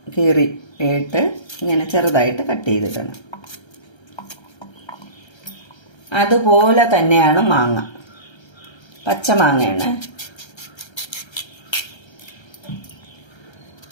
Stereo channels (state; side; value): late; right; 1.3 ms